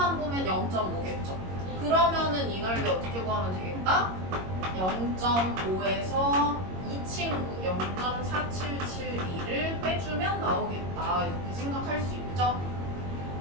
보면 0.5겠죠. 그러면은 이 넓이 어떻게 구하면 되겠다? 0.5에서 이 친구 0.4772를 빼주면 나오겠다. 이렇게 생각할 수 있죠?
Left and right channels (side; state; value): left; late; 22 ms